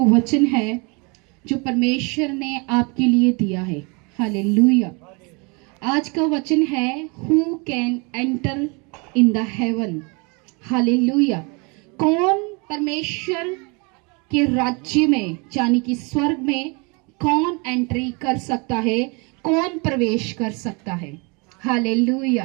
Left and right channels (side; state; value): left; quieter; 30.5 dB